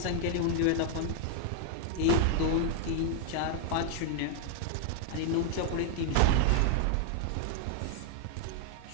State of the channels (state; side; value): different; both; correlation 0.00